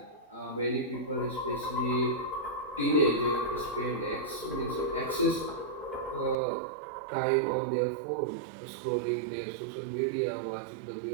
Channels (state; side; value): drops out; left; at 6.4 s